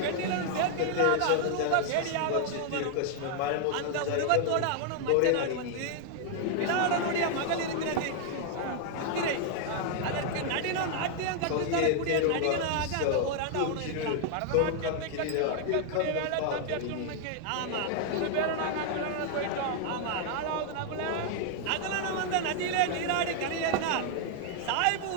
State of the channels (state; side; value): different; both; correlation 0.00